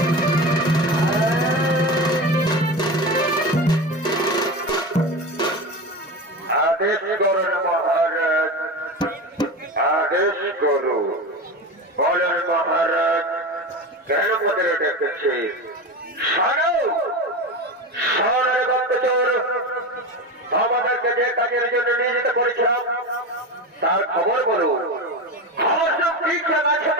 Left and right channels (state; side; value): normal; both; correlation 0.24